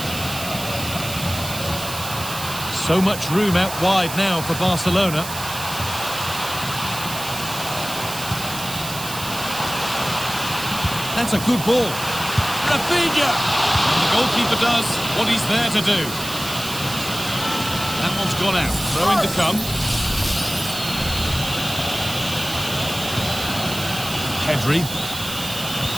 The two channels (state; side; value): noise; right; hiss, 8 dB below the sound